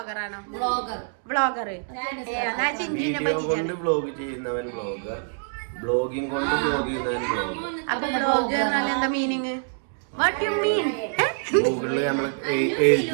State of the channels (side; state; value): left; silent; digital silence